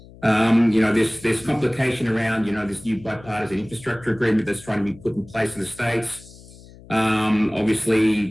there's complication around, this new bipartisan infrastructure agreement that's trying to be put in place in the States.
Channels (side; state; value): left; noise; hum, 21 dB below the sound